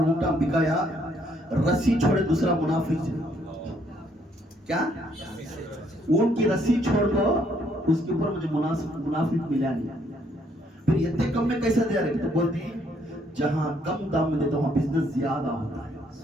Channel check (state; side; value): normal; both; correlation 0.69